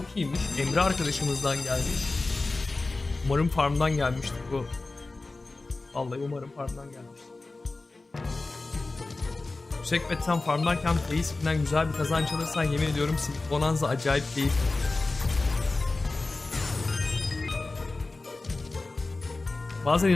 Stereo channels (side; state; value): right; quieter; 3.4 dB